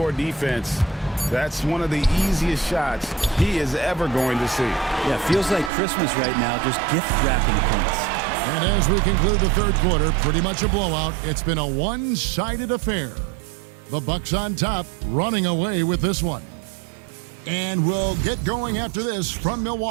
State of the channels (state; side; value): drops out; left; at 5.7 s